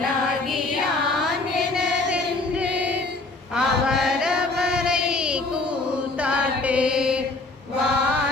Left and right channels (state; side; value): quieter; right; 3.1 dB